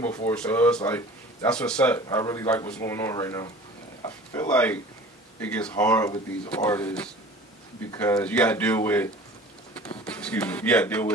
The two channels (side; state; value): both; normal; correlation 0.43